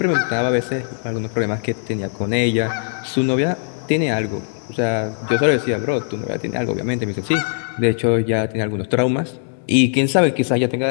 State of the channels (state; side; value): silent; right; 66 dB below the other